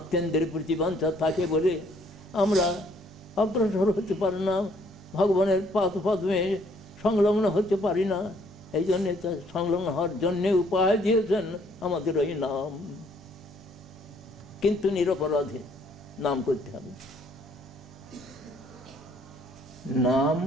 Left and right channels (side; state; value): both; normal; correlation 0.64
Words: প্রতিবাঞ্ছা থাকে বলে আমরা অগ্রসর হতে পারি না, ভগবানের পদ্মে সংলগ্ন হতে পারি না। এই জন্যে সংলগ্ন হওয়ার জন্যে উপায় দিয়েছেন আমাদের ওই নাম। কিন্তু নিরপরাধে নাম করতে হবে। নাম